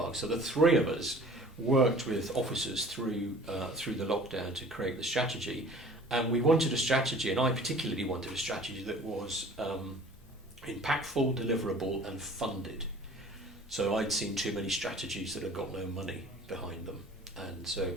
So the 3 of us worked with officers through the lockdown to create the strategy, and we wanted a strategy, and I particularly wanted a strategy that was impactful, deliverable and funded. So I'd seen too many strategies that had got no money behind them, and so it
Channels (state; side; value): normal; both; correlation 0.47